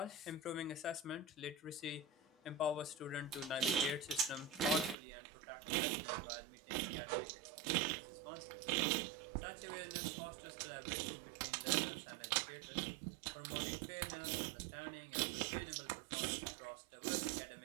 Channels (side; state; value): left; drops out; at 5.0 s